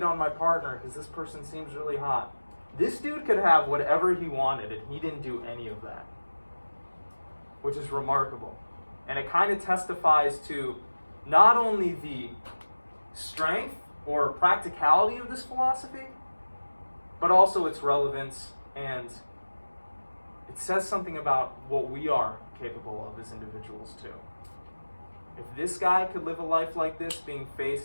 on my partner because this person seems really hot. This dude could have whatever he wanted, and he didn't do any of that, which is remarkable. And it kind of testifies to not only the strength or practicality of this philosophy, but also its relevance, and it says something about what we are capable of as individuals too. If this guy could live a life like this, being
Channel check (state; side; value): inverted; both; correlation -1.00